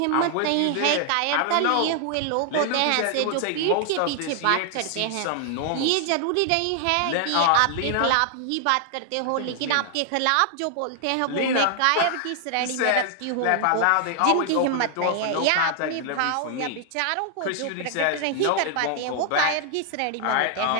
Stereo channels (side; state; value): both; different; correlation 0.00